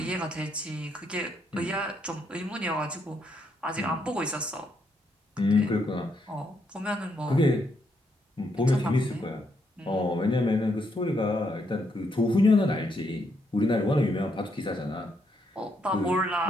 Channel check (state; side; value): normal; both; correlation 0.76